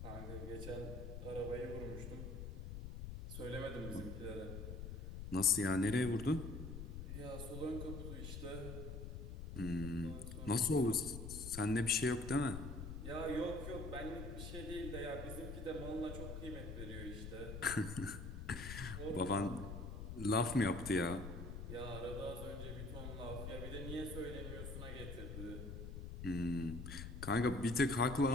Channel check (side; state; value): left; noise; rumble, 7 dB below the sound